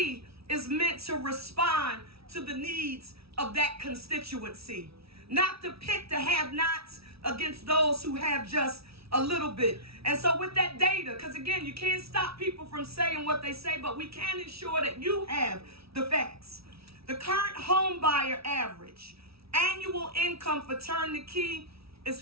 is meant to respond to the needs of that constituency, not to pit the have-nots against those who have just a little bit. And so with that data, because again, you can't stop people from saying what they say, but we can ensure that you have the facts. The current home buyer average annual income for Turn the Key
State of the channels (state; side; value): late; left; 0.76 ms